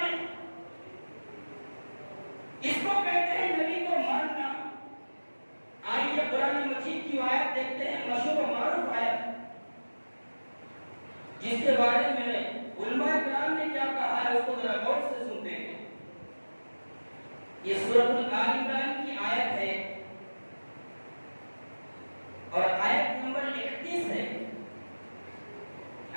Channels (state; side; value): inverted; both; correlation -1.00